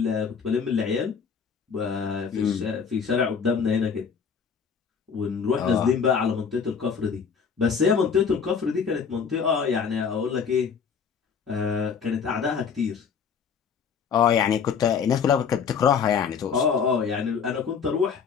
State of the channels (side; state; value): right; quieter; 6.4 dB